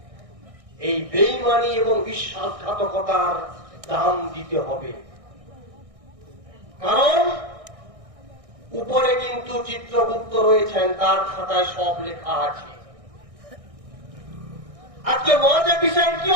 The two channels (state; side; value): late; left; 1.6 ms